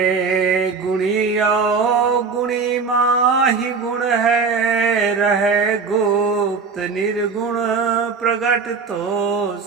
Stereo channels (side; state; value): left; quieter; 5.1 dB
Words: गुणिया गुणी माहि गुण है, रहे गुप्त निर्गुण प्रगट तो